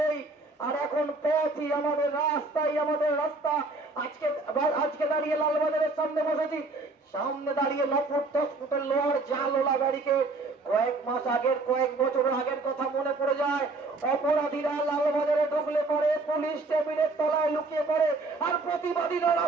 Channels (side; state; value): left; quieter; 3.4 dB